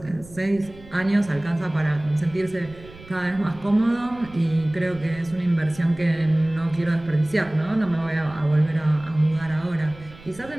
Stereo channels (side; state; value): right; noise; rumble, 20 dB below the sound